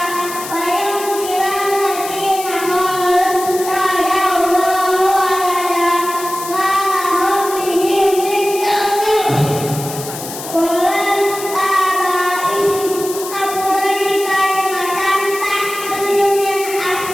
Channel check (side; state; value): left; noise; hiss, 10 dB below the sound